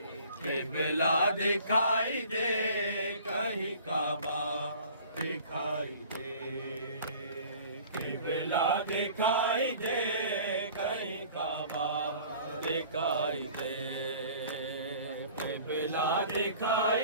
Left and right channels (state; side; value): inverted; both; correlation -0.48